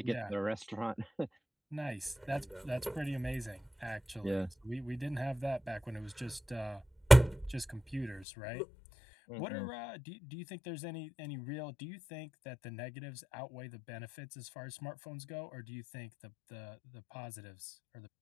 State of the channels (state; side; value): drops out; right; at 8.2 s